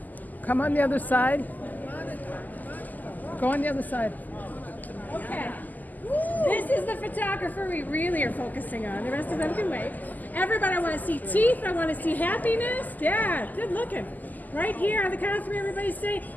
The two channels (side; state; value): right; late; 0.083 ms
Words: come on the other side? Go on the other side. Okay. This is the photographer we really are focusing on. The rest of them can wait. Everybody, I want to see teeth. I want to see happiness. Yeah, good looking. Right here on the count of three, everybody say